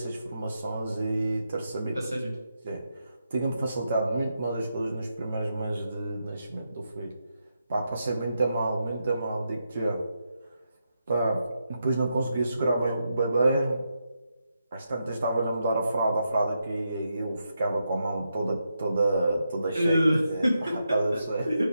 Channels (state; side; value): inverted; both; correlation -0.84